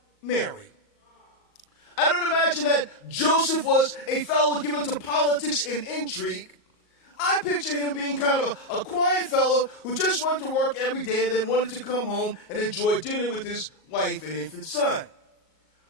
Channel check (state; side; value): late; right; 38 ms